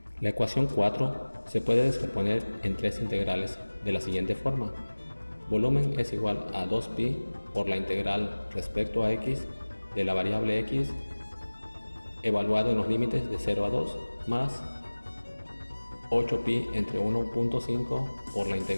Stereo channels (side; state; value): both; inverted; correlation -1.00